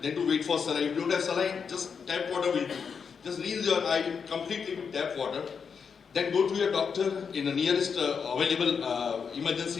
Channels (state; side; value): quieter; right; 6.2 dB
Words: than to wait for saline. If you don't have saline, just tap water will do. Just rinse your eye completely with tap water. Then go to your doctor in the nearest available